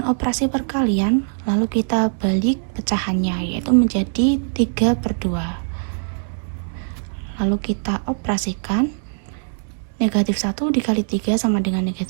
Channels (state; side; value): silent; left; 65 dB below the other